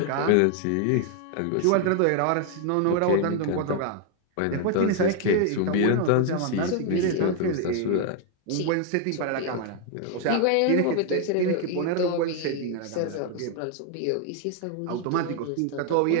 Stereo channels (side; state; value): both; different; correlation 0.00